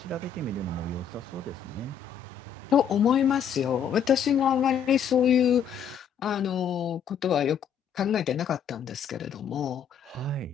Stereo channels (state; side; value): quieter; right; 7.6 dB